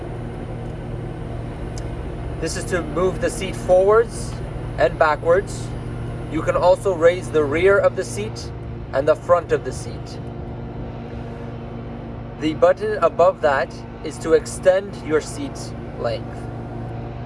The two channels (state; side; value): identical; both; correlation 1.00